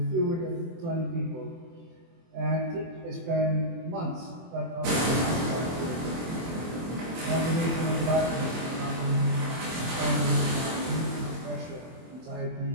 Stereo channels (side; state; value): left; late; 24 ms